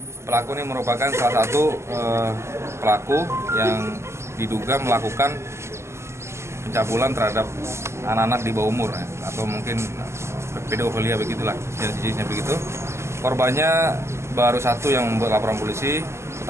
pelaku ini merupakan salah satu pelaku yang diduga melakukan pencabulan terhadap anak-anak di bawah umur ya, atau mungkin pedofilia begitulah jenisnya begitu. Korbannya baru satu yang membuat laporan polisi.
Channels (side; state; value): left; late; 0.13 ms